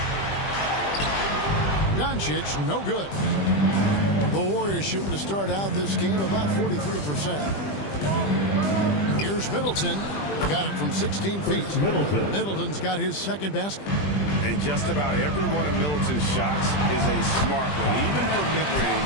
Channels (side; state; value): right; late; 20 ms